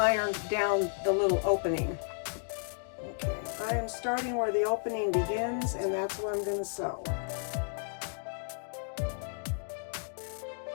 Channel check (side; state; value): right; silent; digital silence